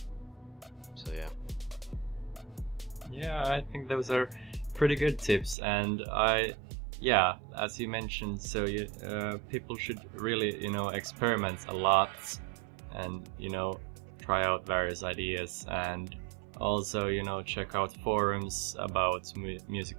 So yeah. Yeah, I think those are pretty good tips, and yeah, as you mentioned, so people should really experiment a lot, and try out various ideas, and also check out forums about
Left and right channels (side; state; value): left; drops out; at 5.6 s